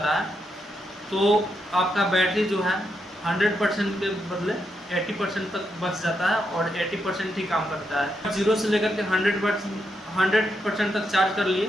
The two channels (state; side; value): normal; both; correlation 0.82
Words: है तो आपका बैटरी जो है 100% के बदले 80% तक बच जाता है और 80% ही काम करता है। 0 से लेकर के 100% तक चार्ज कर